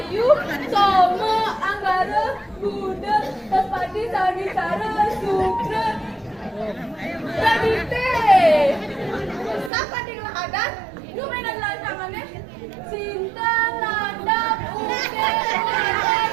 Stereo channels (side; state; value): left; drops out; at 9.7 s